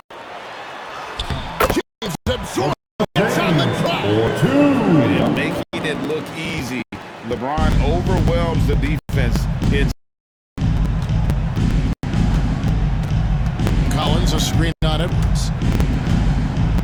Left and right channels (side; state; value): both; identical; correlation 1.00